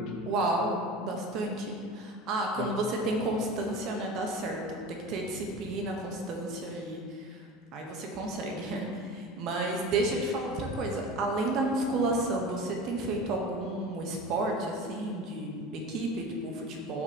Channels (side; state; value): both; normal; correlation 0.34